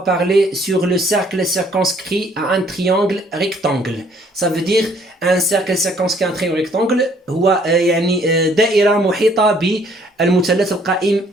sur le cercle circonscrit à un triangle rectangle. Ça veut dire un cercle circonscrit à un triangle rectangle هو يعني دائرة محيطة بالمثلث القائم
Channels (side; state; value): both; normal; correlation 0.62